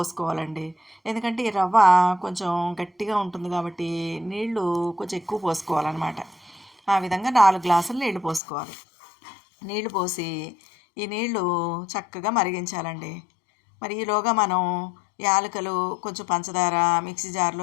ఎందుకంటే ఈ రవ్వ కొంచెం గట్టిగా ఉంటుంది కాబట్టి నీళ్లు కొంచెం ఎక్కువ పోసుకోవాలన్నమాట. ఆ విధంగా 4 గ్లాసులు నీళ్లు పోసుకోవాలి. నీళ్లు పోసి ఈ నీళ్లు చక్కగా మరిగించాలండి. మరి ఈలోగా మనం యాలకులు, కొంచెం పంచదార మిక్సీ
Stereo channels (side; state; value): right; drops out; at 8.4 s